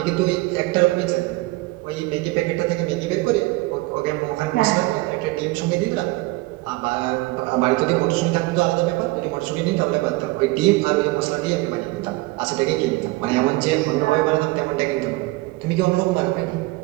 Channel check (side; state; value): left; quieter; 21.7 dB